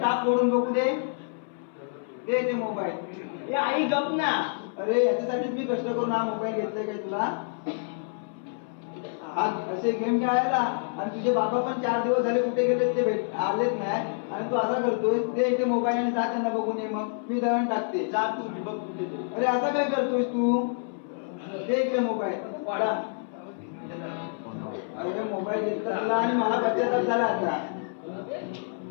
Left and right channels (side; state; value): right; silent; 60 dB below the other